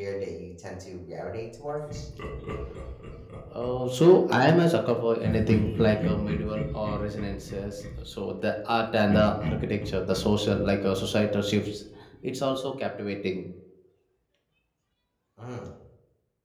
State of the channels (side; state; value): both; identical; correlation 1.00